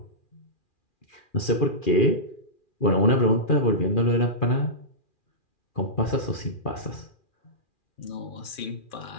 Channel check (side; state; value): right; late; 2.4 ms